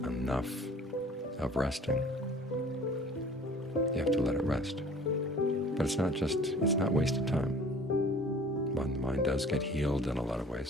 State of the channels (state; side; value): normal; both; correlation 0.48